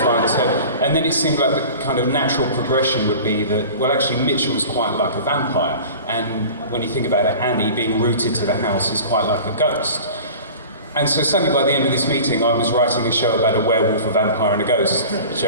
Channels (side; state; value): both; inverted; correlation -0.39